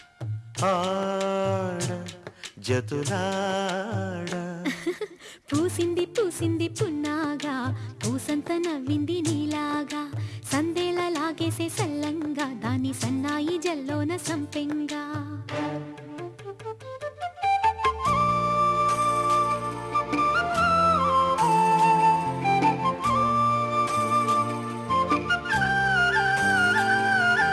ఆడ జతులాడ పూసింది పూసింది పున్నాగా పూసంత నవ్వింది నీలాగా సందేళ లాగేసే సల్లంగా దాని సన్నాయి జల్లోన సంపెంగా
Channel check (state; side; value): identical; both; correlation 1.00